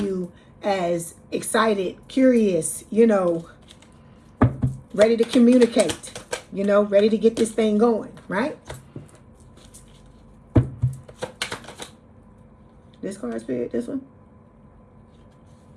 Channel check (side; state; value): both; identical; correlation 1.00